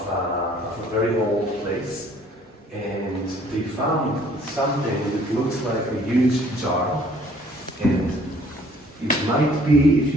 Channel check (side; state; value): both; normal; correlation 0.58